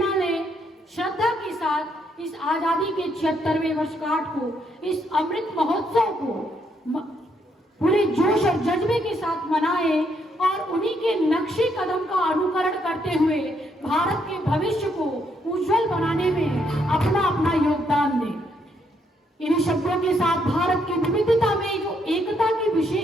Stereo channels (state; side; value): normal; both; correlation 0.74